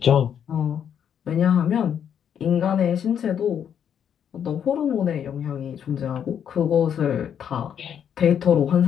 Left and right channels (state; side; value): quieter; right; 8.6 dB